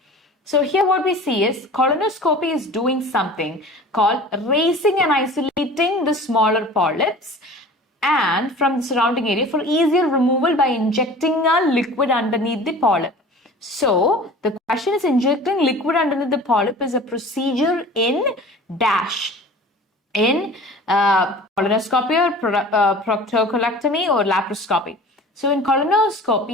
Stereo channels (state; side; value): normal; both; correlation 0.42